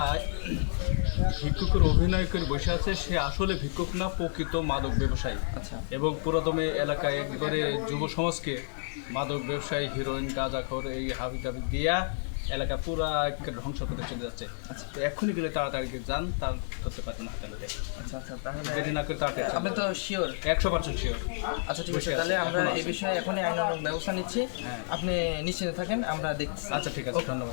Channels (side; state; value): right; silent; digital silence